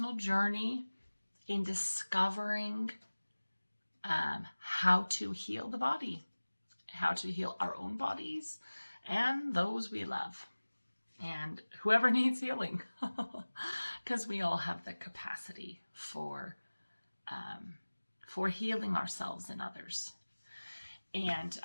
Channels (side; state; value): both; inverted; correlation -1.00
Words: journey in discovering how to heal the body, how to heal our own bodies and those we love, and whoever needs healing, because we all have the capacity for healing ourselves and others. And